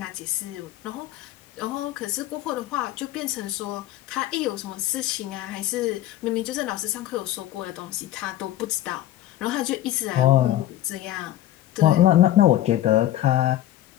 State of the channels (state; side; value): quieter; right; 13.7 dB